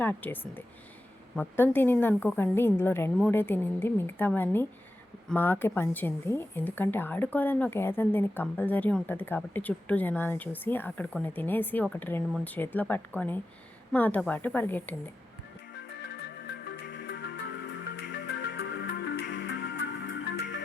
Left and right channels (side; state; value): both; normal; correlation 0.91